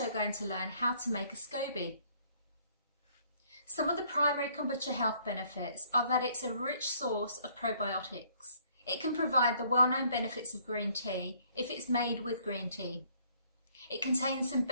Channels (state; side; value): inverted; both; correlation -0.63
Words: going to learn how to make a Scoby. Some of the primary kombucha health benefits are that it's a rich source of probiotics. It can provide the well-known benefits of green tea if it's made with green tea. It contains some